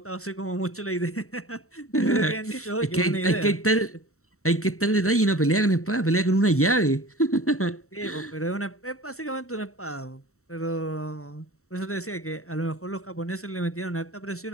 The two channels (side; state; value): right; late; 0.64 ms